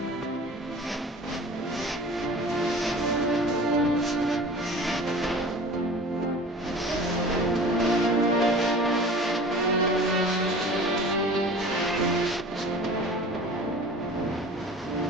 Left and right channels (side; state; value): both; normal; correlation 0.41